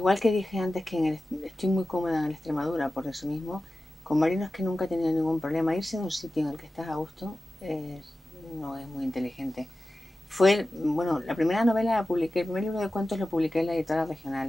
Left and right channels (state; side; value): normal; both; correlation 0.94